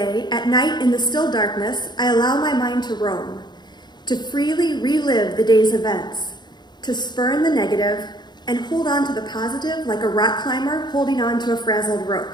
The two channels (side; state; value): right; late; 0.21 ms